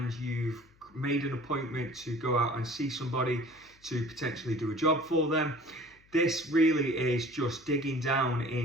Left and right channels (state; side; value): noise; left; hum, 30 dB below the sound